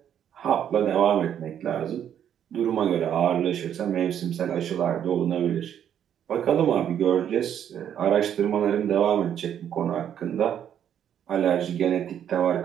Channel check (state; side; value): quieter; left; 9.5 dB